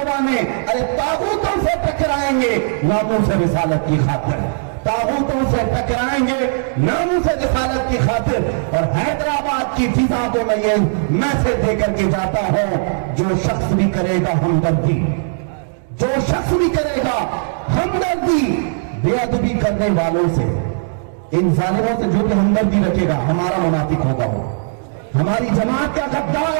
ارے طاغوتوں سے ٹکرائیں گے ناموس رسالت کی خاطر, طاغوتوں سے ٹکرائیں گے ناموس رسالت کی خاطر. اور حیدرآباد کی فضا کو میں یہ میسج دے کر کے جاتا ہوں, جو شخص بھی کرے گا ہمدردی, جو شخص بھی کرے گا ہمدردی بے ادبی کرنے والوں سے, ان ظالموں سے جو بھی ہمدردی رکھے گا ہمارا منافق ہوگا, وہ ہماری جماعت کا غدار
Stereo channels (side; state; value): left; silent; digital silence